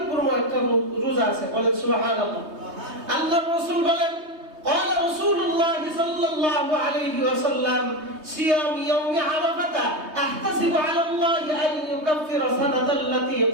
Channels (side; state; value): left; late; 3.2 ms